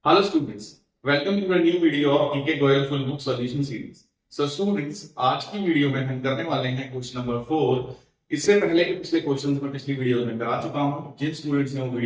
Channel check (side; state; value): both; identical; correlation 1.00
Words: Hello students, welcome to a new video of DK Goyal Full Book Solution Series. So students, आज की video में हम करने वाले हैं क्वेश्चन नंबर 4। इससे पहले के पिछले क्वेश्चंस में पिछली वीडियो में करा चुका हूं। जिन स्टूडेंट्स ने वो